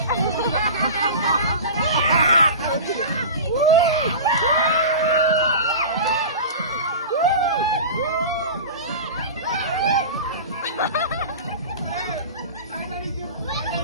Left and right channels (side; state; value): both; inverted; correlation -0.31